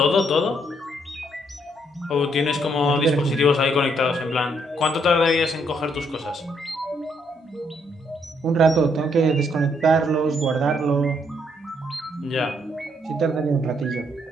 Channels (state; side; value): normal; both; correlation 0.72